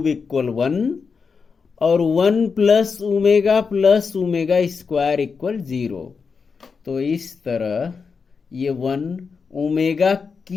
इक्वल 1 और 1 प्लस ओमेगा स्क्वायर इक्वल 0। तो इस तरह ये 1 ओमेगा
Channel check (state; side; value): quieter; right; 5.3 dB